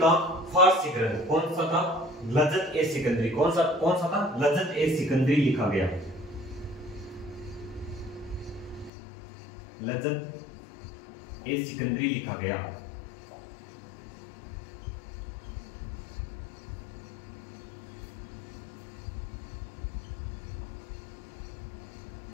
का फारसी ग्रंथ कौन सा था? लज़्ज़त ए सिकंदरी। कौन सा था? लज़्ज़त ए सिकंदरी लिखा गया। लज़्ज़त ए सिकंदरी लिखा गया।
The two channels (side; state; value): right; drops out; at 8.9 s